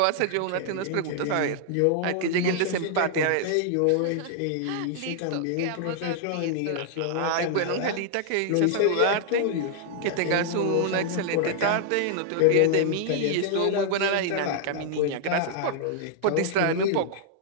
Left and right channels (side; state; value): both; different; correlation -0.01